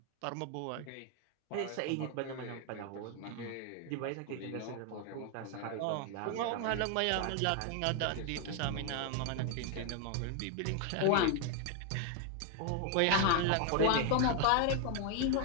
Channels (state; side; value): different; both; correlation 0.01